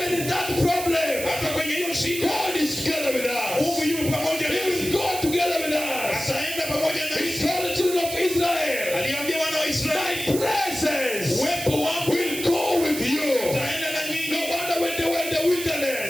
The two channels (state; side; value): noise; right; hiss, 7 dB below the sound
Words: in that problem, Hata kwenye hiyo shida, God is together with us. Mungu yuko pamoja He nasi. will go together with us. Ataenda pamoja He nasi. told the children of Israel, Aliambia wana wa my Israeli, presence uwepo wangu will go with you. utaenda na No nyinyi. wonder when they were in the